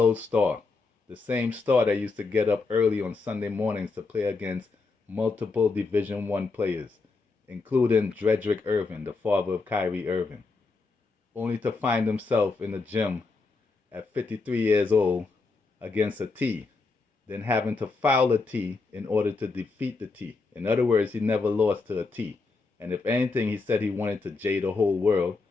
Star? The same Star that used to get up early on Sunday mornings to play against multiple Division One players, including Dredrick Irving, the father of Kyrie Irving, only to find himself in the gym at 53 years old against a T, then having to foul a T in order to defeat the T. In other words, he never lost to a T. And if anything, he said he wanted to J the whole world.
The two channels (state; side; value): quieter; right; 4.0 dB